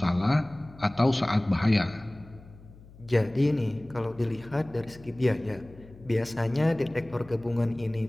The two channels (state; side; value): noise; left; hum, 21 dB below the sound